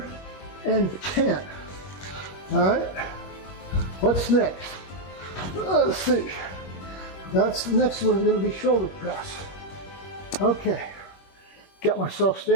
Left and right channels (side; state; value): right; late; 21 ms